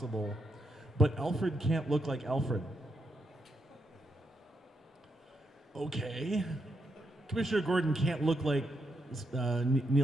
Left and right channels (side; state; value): both; normal; correlation 0.81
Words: but Alfred can't look like Alfred. Okay. Commissioner Gordon can't look like